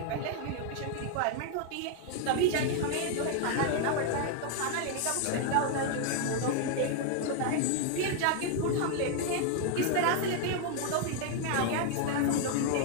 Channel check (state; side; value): different; both; correlation 0.00